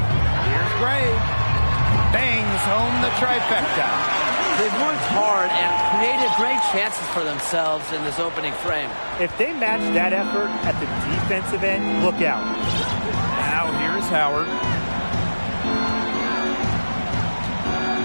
Gray. Bangs home the trifecta. They've worked hard and created great chances for themselves in this opening frame. If they match that effort at the defensive end, look out. Now here's Howard.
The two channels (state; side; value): inverted; both; correlation -1.00